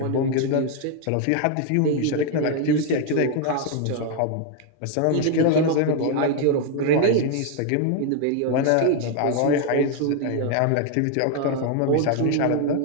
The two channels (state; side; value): different; both; correlation 0.01